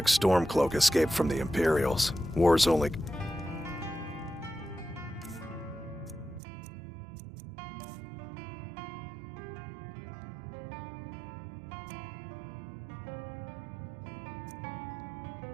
Stormcloak escaped from the Imperials. War's only...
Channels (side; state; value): left; drops out; at 6.4 s